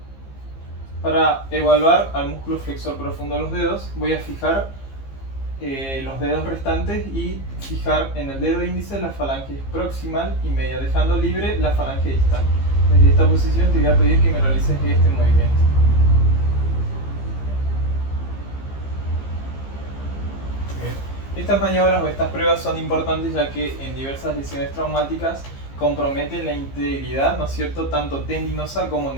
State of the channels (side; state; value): right; late; 15 ms